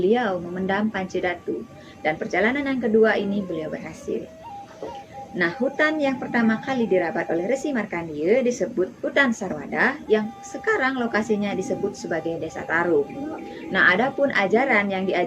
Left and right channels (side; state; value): both; identical; correlation 1.00